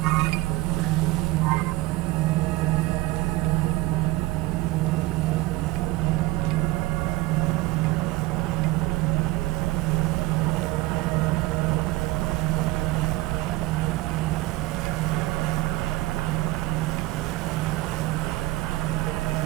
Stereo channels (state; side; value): quieter; left; 18.4 dB